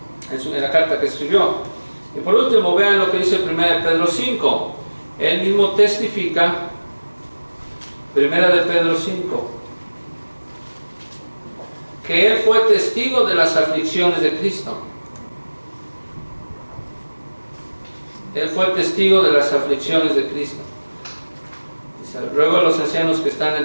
que escribió. Y por último, vean lo que dice 1 Pedro 5. Él mismo testifica, 1 Pedro 5, que él fue testigo de las aflicciones de Cristo. Él fue testigo de las aflicciones de Cristo. Dice, ruego a los ancianos que están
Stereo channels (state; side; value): inverted; both; correlation -1.00